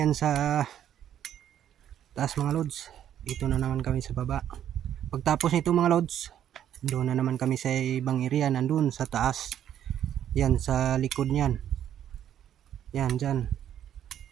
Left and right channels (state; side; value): quieter; left; 10.4 dB